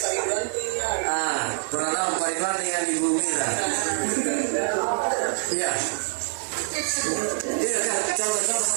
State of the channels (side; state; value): left; silent; 62 dB below the other